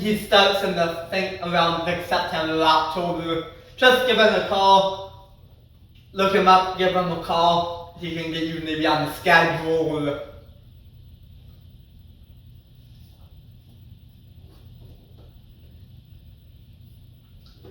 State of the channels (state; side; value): identical; both; correlation 1.00